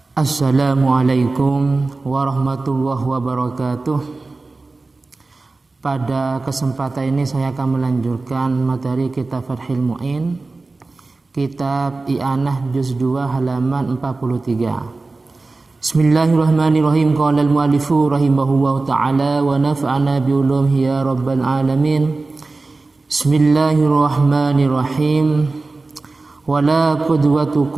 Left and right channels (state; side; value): quieter; left; 3.5 dB